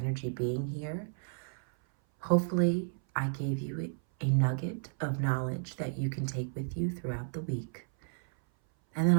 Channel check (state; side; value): silent; left; 56 dB below the other